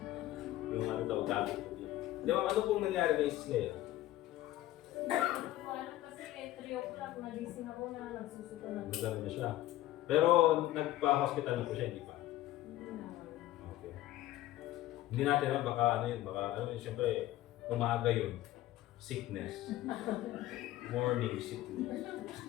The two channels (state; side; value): quieter; right; 15.2 dB